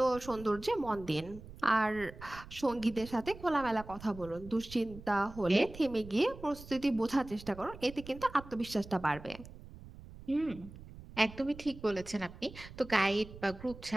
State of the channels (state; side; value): noise; right; rumble, 16 dB below the sound